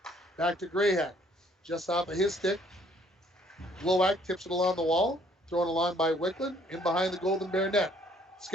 Back to Grayhack. Just off of his stick. Glowak tips it along the wall. Thrown along by Wickland. In behind the Golden Bear net.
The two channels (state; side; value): normal; both; correlation 0.62